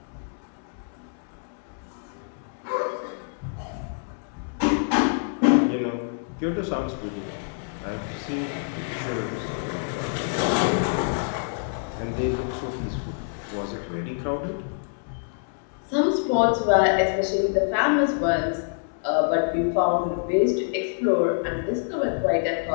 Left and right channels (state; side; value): silent; right; digital silence